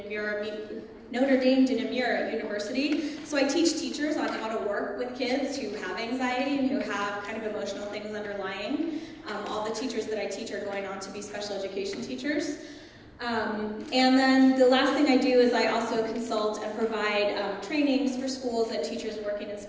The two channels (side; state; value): both; identical; correlation 1.00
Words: Namur University. So I teach teachers on how to work with kids who have anxiety and who have kind of emotional things underlying. All the teachers that I teach are going on to be special education teachers. And then the last thing I do is I also consult and provide trainings for schools and teachers working in